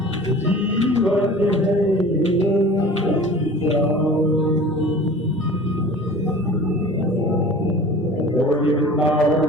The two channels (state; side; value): normal; both; correlation 0.42